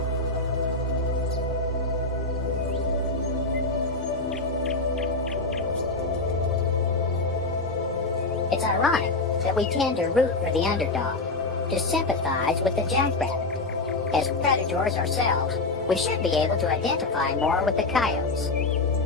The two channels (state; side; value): quieter; right; 3.3 dB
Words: It's ironic that we tend to root for the underdog, to sympathize with the jackrabbit. As predators ourselves, we should be able to identify more with the coyotes.